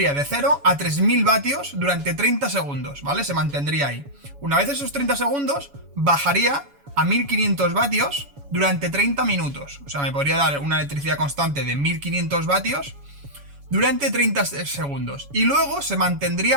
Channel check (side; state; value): left; late; 7.1 ms